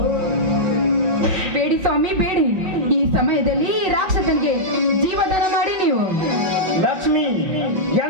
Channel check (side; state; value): left; late; 5.2 ms